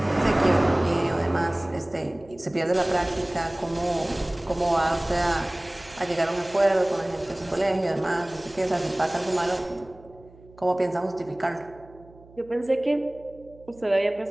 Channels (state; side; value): noise; right; hum, 24 dB below the sound